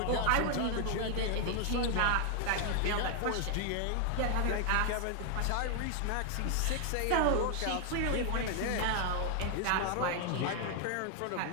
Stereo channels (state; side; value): different; both; correlation 0.00